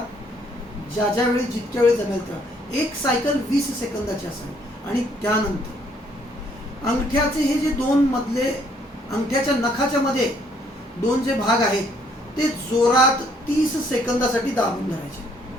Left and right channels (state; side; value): normal; both; correlation 0.66